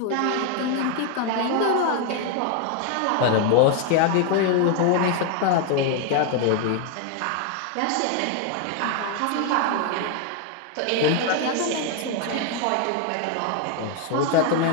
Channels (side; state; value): both; different; correlation 0.00